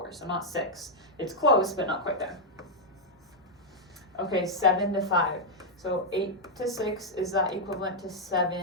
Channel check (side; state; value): both; normal; correlation -0.03